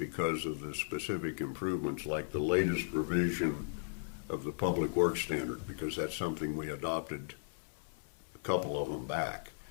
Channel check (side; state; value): right; silent; 54 dB below the other